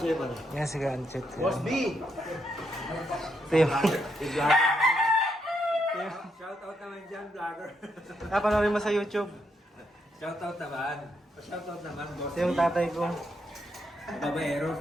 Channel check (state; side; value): normal; both; correlation 0.78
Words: pala. Yan si Ganchit. Boss B! Ito yung... Shoutout naman dyan, vlogger. Panoorin mo sa YouTube. Shoutout naman. Shoutout naman, boss Ito yung tatay ko. Babaero